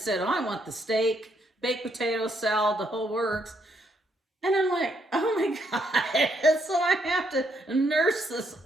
I want the steak, baked potato, salad, the whole works. And I'm like, oh my God. So I have to nurse this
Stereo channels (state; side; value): normal; both; correlation 0.74